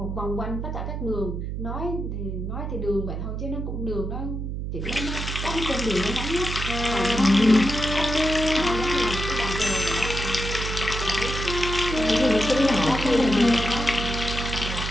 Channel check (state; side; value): noise; right; hum, 4 dB below the sound